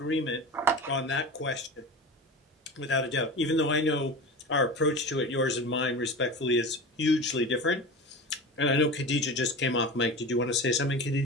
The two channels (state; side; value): normal; both; correlation 0.30